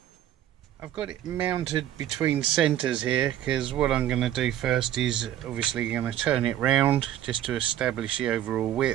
I've got it mounted between centres here because what I'm going to do first is obviously going to turn it round just to establish the overall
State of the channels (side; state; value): left; quieter; 11.9 dB